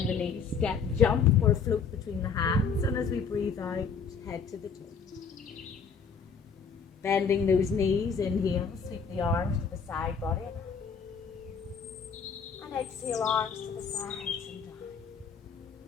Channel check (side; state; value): right; quieter; 5.9 dB